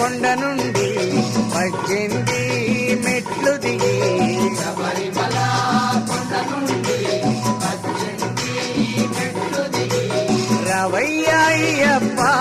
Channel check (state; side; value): identical; both; correlation 1.00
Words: నుండి 18 మెట్లు దిగి శబరిమల కొండ నుండి 18 మెట్లు దిగి రవయ్య అయ్యప్ప